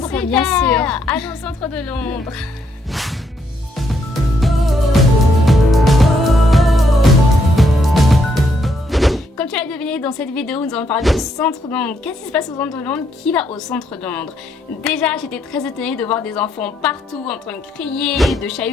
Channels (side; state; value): both; normal; correlation 0.74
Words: super, bien sûr. Allons au centre de Londres. Comme tu l'as deviné dans cette vidéo, nous allons parler du centre de Londres. Qu'est-ce qui se passe au centre de Londres? Qui va au centre de Londres? Déjà, j'étais très étonnée de voir des enfants partout en train de crier, de